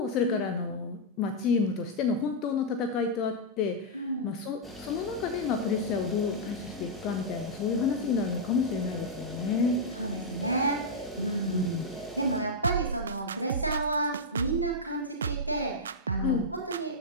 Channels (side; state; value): both; normal; correlation -0.07